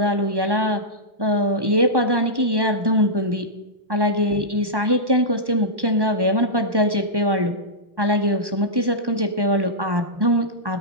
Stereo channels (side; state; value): left; late; 1.1 ms